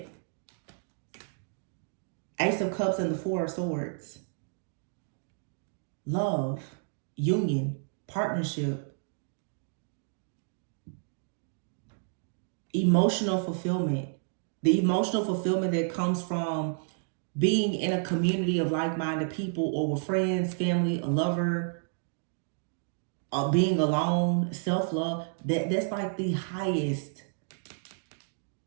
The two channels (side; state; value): left; silent; 57 dB below the other